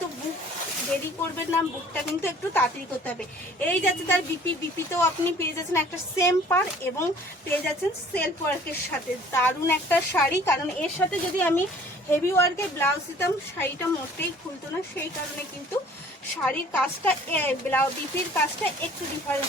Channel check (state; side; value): normal; both; correlation 0.52